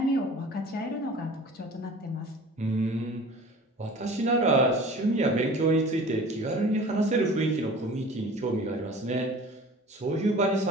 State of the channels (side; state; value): both; normal; correlation 0.43